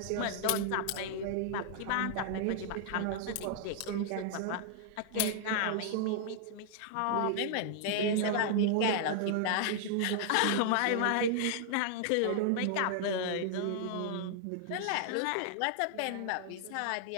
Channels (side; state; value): both; different; correlation -0.01